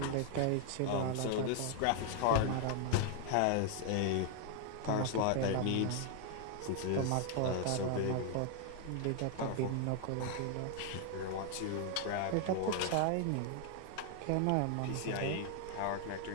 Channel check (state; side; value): different; both; correlation 0.00